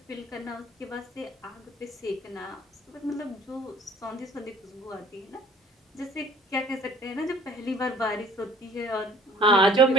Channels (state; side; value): normal; both; correlation 0.52